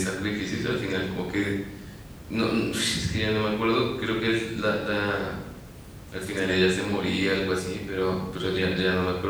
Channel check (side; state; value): both; identical; correlation 1.00